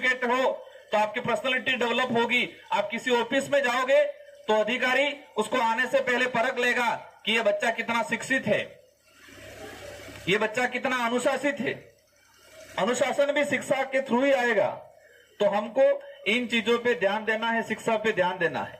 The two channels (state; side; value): identical; both; correlation 1.00